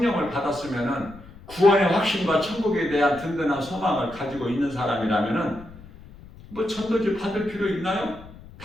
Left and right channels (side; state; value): left; noise; rumble, 19 dB below the sound